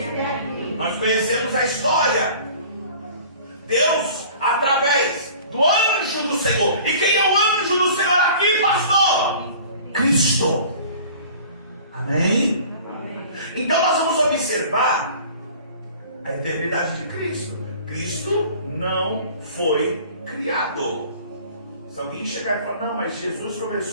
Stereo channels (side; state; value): both; inverted; correlation -0.46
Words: aqui. Nós conhecemos a história. Deus, através do anjo do Senhor. E quem é o anjo do Senhor aqui, pastor? Cristo. Amém? Então nós vamos observar a eternidade de Cristo. Cristo não foi criado. Se alguém chegar e falar, não, mas Jesus